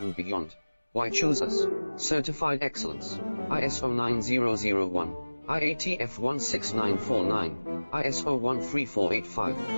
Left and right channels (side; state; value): both; inverted; correlation -1.00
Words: beyond. Why choose us? Certified excellence. ISO 9001, IATF 16949, ISO 13485.